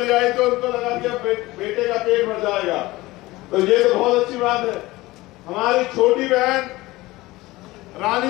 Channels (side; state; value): right; quieter; 19.5 dB